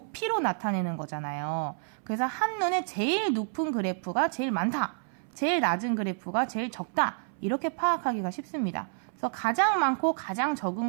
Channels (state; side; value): silent; left; 58 dB below the other